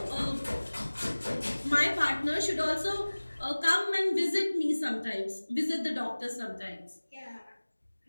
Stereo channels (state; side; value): inverted; both; correlation -1.00